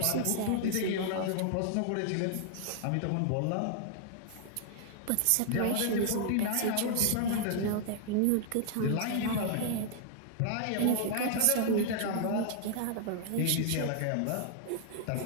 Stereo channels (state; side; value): different; both; correlation 0.00